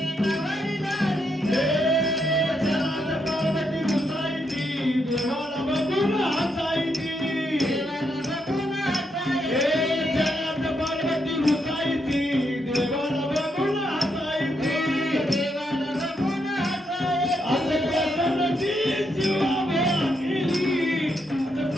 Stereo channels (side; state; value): both; normal; correlation 0.79